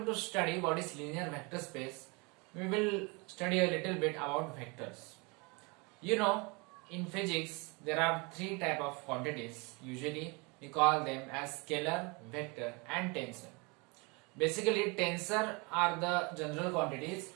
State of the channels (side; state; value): left; quieter; 29.1 dB